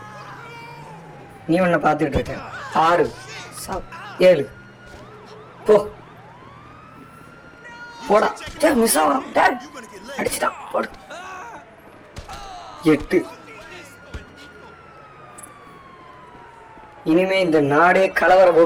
நீ ஒன்ன பார்த்துட்டு இருக்க. 6. சாவ். 7. போ போடா. மிஸ் ஆகும். அடிச்சுட்டான். போடு. 8. இனிமே இந்த நாடே கலவர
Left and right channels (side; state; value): both; identical; correlation 1.00